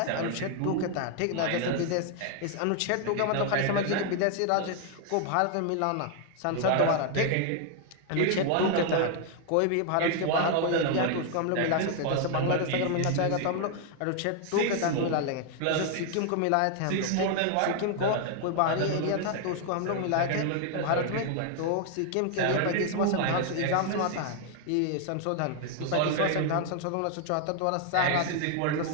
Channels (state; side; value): different; both; correlation 0.00